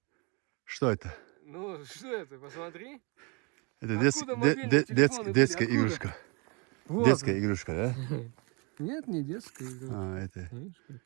Что это? Ну, что это? Посмотри. Это Откуда мобильные телефоны были? детская Откуда? игрушка. Вот. Детская игрушка, да? Нет, не детская игрушка. А, это. Видишь, как?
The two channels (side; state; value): left; quieter; 31.5 dB